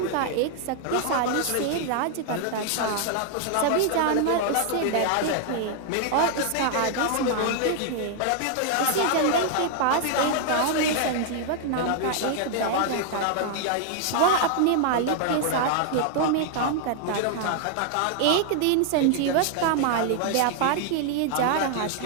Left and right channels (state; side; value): different; both; correlation 0.00